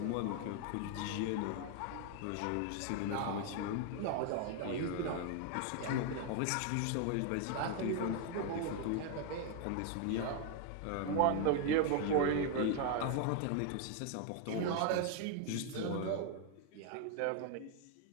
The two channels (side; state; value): both; different; correlation 0.00